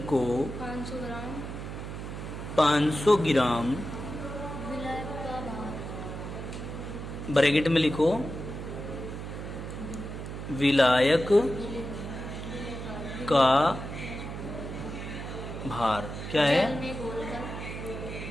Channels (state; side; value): noise; right; hum, 7 dB below the sound